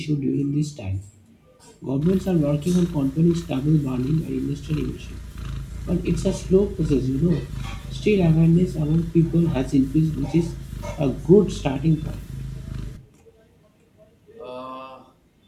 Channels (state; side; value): identical; both; correlation 1.00